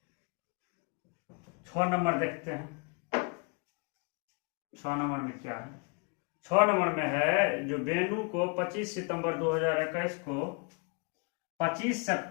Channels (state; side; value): quieter; right; 34.3 dB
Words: छह नंबर देखते हैं, 6 नंबर में क्या है? 6 नंबर में है जो बेनू को 25 सितंबर 2021 को 25